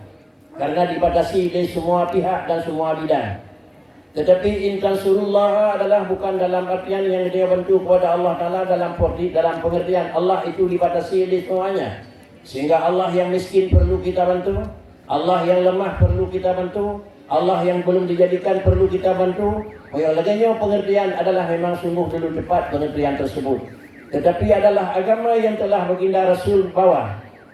karena dibatasi dari semua pihak dan semua bidang. Tetapi intan surullah adalah bukan dalam artian yang dia bantu kepada Allah Ta'ala dalam pengertian Allah itu dibatasi dari semuanya, sehingga Allah yang miskin perlu kita bantu, Allah yang lemah perlu kita bantu, Allah yang belum dijadikan perlu kita bantu. Yang lainnya pengertian adalah memang sungguh dulu tepat pengertian tersebut. Tetapi adalah agama yang telah baginda Rasul bawa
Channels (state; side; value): identical; both; correlation 1.00